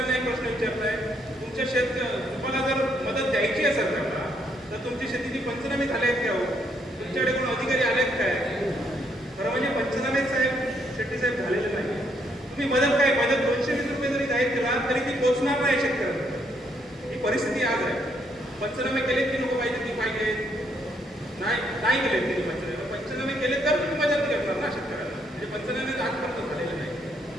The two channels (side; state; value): both; normal; correlation 0.73